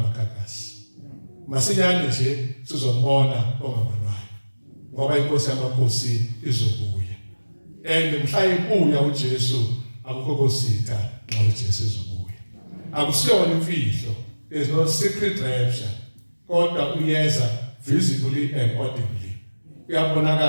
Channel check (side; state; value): both; inverted; correlation -1.00